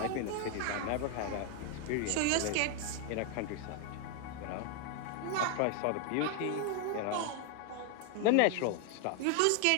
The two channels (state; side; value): different; both; correlation 0.00